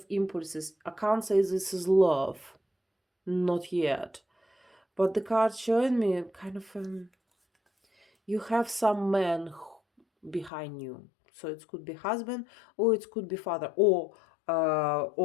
impulses. I can't say this is love, not yet. But the card showing me kind of you have some man behind you. So it could be husband, or it could be father, or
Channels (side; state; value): right; drops out; at 10.5 s